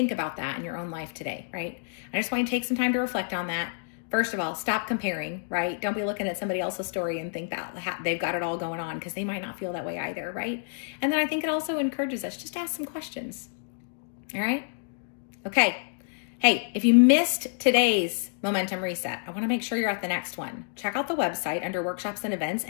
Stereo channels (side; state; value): right; silent; digital silence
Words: about that in your own life today, right? I just want you to take some time to reflect on that. First of all, stop comparing, right? Don't be looking at somebody else's story and think that they've got it all going on because they might not feel that way either, right? And then I think it also encourages us just to ask some questions, all right? Okay. Hey, if you missed today's Momentum Reset, I want to make sure you're at the next one. Check out the website under workshops and events